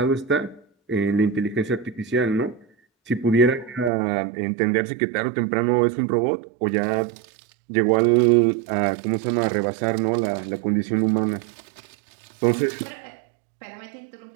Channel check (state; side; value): drops out; left; at 3.9 s